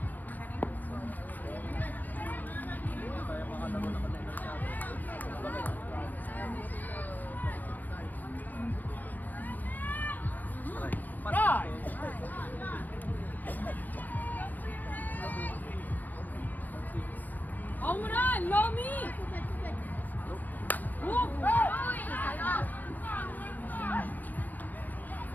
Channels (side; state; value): right; late; 0.084 ms